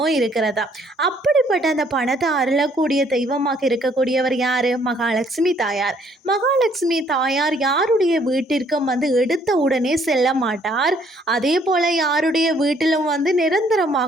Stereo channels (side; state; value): both; normal; correlation 0.64